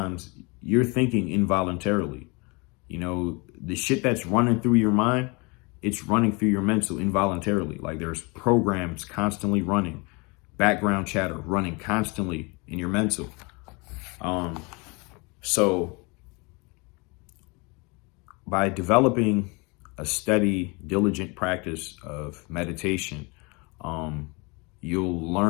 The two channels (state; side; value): quieter; right; 28.6 dB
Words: you're thinking involuntarily. You know, the shit that's running through your mind, it's running through your mental involuntarily. Like, there's programs constantly running, background chatter running constantly in your mental. So by developing a steady, diligent practice of meditation, you'll